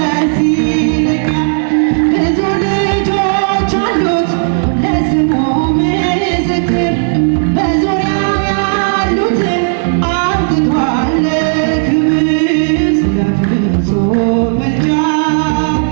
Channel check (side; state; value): left; silent; digital silence